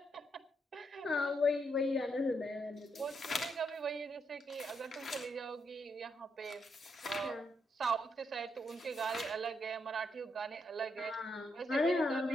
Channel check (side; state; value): both; normal; correlation 0.79